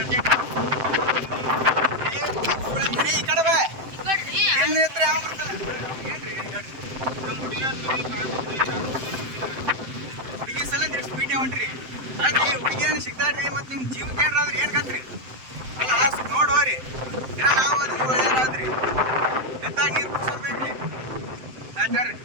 ಈ ಕಡೆ ಬಾ. ಎಲ್ಲಿ ಎತ್ತರ ಯಾವ ಬರ್ತಾರೆ? ಹುಡುಗಿ ಸಲ ನೀವು ಸ್ಪೀಡ್ ಹೊಂಟ್ರಿ. ಅಲ್ರಿ ಹುಡುಗಿಯನ್ನು ಸಿಗ್ತಾಡ್ರಿ, ಮತ್ತು ನಿಮ್ಮ ಜೀವಕ್ಕೆ ಏನಾದ್ರಿ ಏನು ಕತ್ರಿ? ಅಲ್ಲ ನೋಡೋರಿ, ನಾವು ಅದಕ್ಕೆ ಒಳ್ಳೇದಾದ್ರಿ. ಎತ್ತಾಗ ನೀರು ಕುಡಿಸೋರ್ಬೇಕ್ರಿ. ಆಯ್ತಾರ್ರಿ,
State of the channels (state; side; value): late; left; 7.7 ms